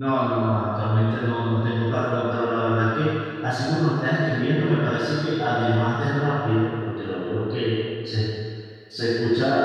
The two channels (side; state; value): both; identical; correlation 1.00